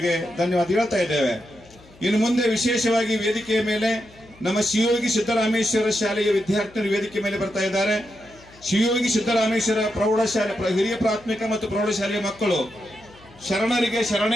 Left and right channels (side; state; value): left; noise; hum, 25 dB below the sound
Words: ಧನ್ಯವಾದ ಹೇಳ್ತಾ ಇದ್ದೇವೆ. ಇನ್ನು ಮುಂದೆ ವಿಶೇಷವಾಗಿ ವೇದಿಕೆಯ ಮೇಲೆ ನಮ್ಮ ಶಿವಯೋಗಿ ಸಿದ್ದರಾಮೇಶ್ವರ ಶಾಲೆಯ ವಿದ್ಯಾರ್ಥಿಗಳು ವೇದಿಕೆ ಮೇಲೆ ಬರ್ತಾ ಇದ್ದಾರೆ. ಶಿವಯೋಗಿ ಸಿದ್ದರಾಮೇಶ್ವರ ಪ್ರೌಢಶಾಲೆ ಹಿರಿಯ ಪ್ರಾಥಮಿಕ ಮತ್ತು ಪ್ರೌಢಶಾಲೆಯ ಮಕ್ಕಳು ಶರಣರಿಗೆ